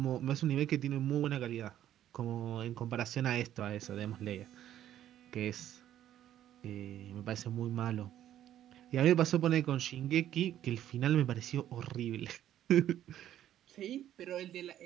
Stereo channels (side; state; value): left; quieter; 11.7 dB